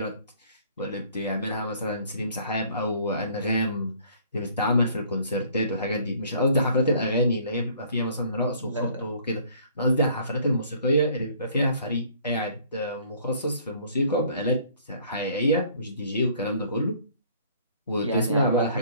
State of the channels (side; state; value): both; inverted; correlation -0.56